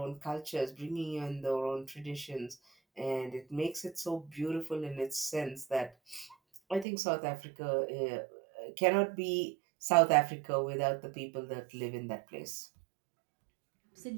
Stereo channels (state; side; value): drops out; left; at 6.9 s